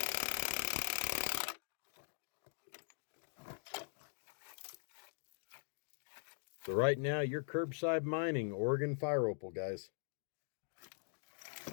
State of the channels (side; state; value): right; silent; digital silence